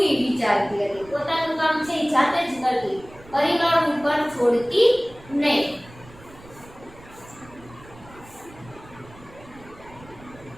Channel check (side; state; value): right; noise; rumble, 21 dB below the sound